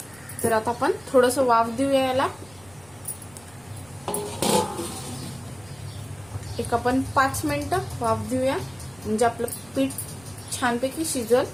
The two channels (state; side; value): noise; right; rumble, 26 dB below the sound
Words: तर आता आपण थोडंसं वाफ देऊया याला. एक आपण 5 मिनिटं वाफ देऊया, म्हणजे आपलं पीठ छानपैकी शिजल.